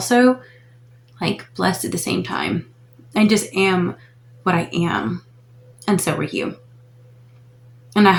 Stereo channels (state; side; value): identical; both; correlation 1.00